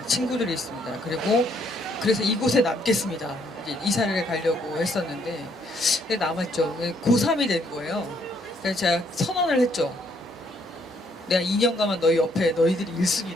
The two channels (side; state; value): both; normal; correlation 0.69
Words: 친구들이 있습니다. 그래서 이곳에 남겠습니다. 이제 이사를 가려고 했었는데 남았죠. 고3이 된 거예요. 그래서 제가 선언을 했죠. 내가 2년간만 너희 옆에 너희들이